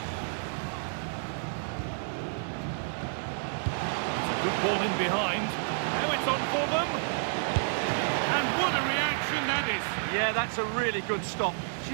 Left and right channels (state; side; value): silent; left; digital silence